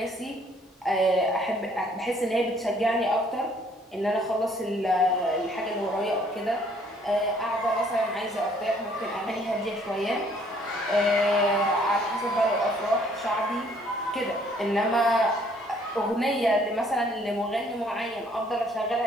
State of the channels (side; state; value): both; normal; correlation 0.62